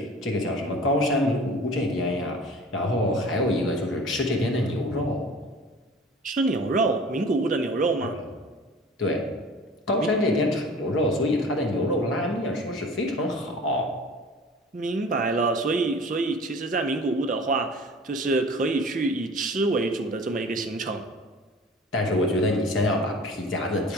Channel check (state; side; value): normal; both; correlation 0.43